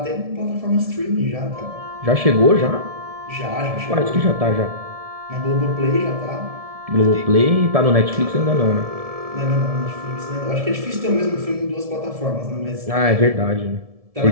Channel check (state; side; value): late; left; 1.7 ms